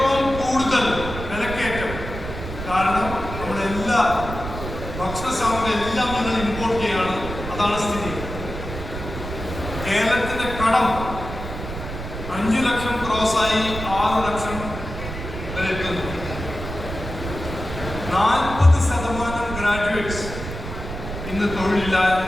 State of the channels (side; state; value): right; noise; rumble, 8 dB below the sound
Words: കൂടുതൽ വിലക്കയറ്റം. കാരണം നമ്മുടെ എല്ലാ ഭക്ഷണ സാമഗ്രി എല്ലാം ഞങ്ങൾ ഇമ്പോർട്ട് ചെയ്യാണ്. അതാണ് സ്ഥിതി. കേരളത്തിന്റെ കടം 5 ലക്ഷം ക്രോസായി 6 ലക്ഷം വരെ എത്തുന്നു. 40% ഗ്രാജുവേറ്റ്സ് ഇന്ന്